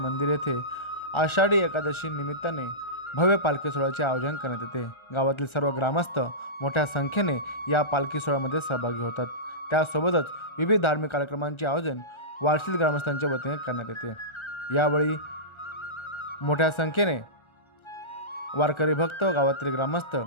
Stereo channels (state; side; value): late; right; 1.3 ms